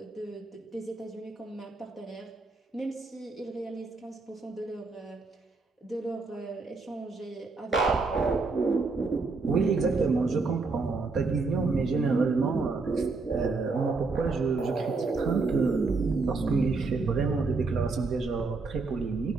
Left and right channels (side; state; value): left; quieter; 4.0 dB